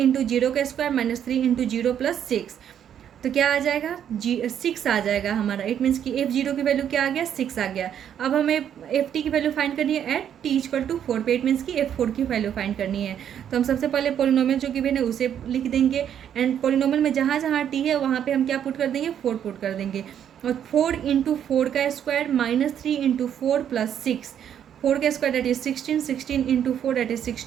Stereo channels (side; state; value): left; quieter; 9.4 dB